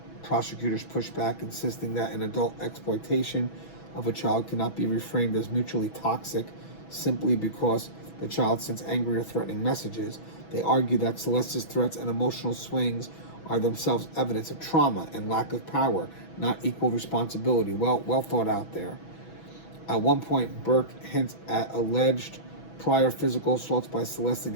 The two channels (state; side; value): late; right; 6.1 ms